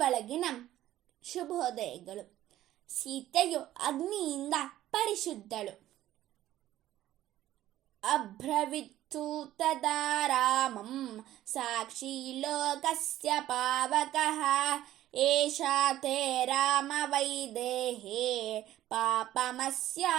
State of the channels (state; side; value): quieter; left; 13.8 dB